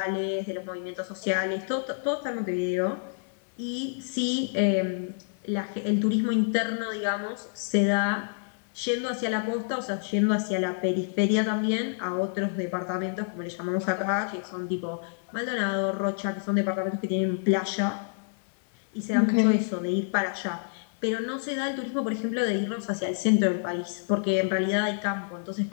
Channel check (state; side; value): silent; right; 59 dB below the other